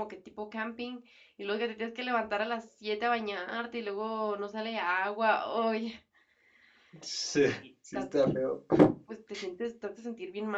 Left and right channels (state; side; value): identical; both; correlation 1.00